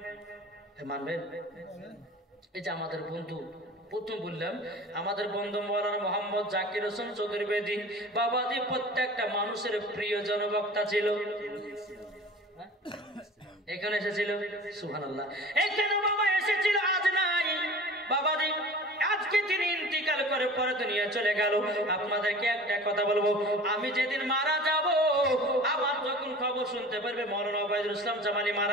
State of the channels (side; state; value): both; normal; correlation 0.41